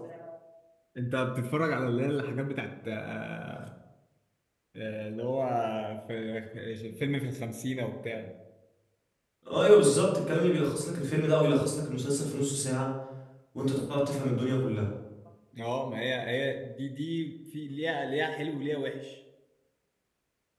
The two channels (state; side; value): identical; both; correlation 1.00